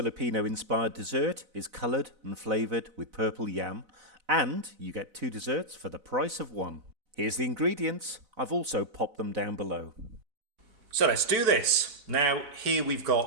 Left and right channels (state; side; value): late; left; 4.0 ms